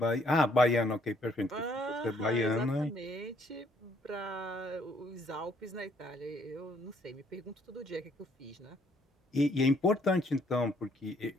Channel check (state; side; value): normal; both; correlation 0.66